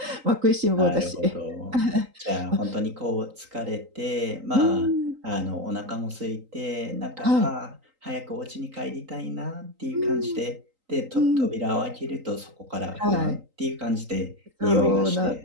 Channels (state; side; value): late; left; 3.8 ms